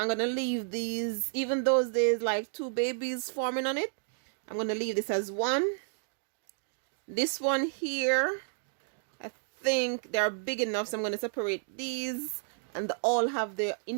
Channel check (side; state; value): left; silent; digital silence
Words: gonna leave these, even though there's like two babies forming on it, I'm gonna leave this as one. This one here, I think they're big enough, so I'm gonna separate these, and they all have their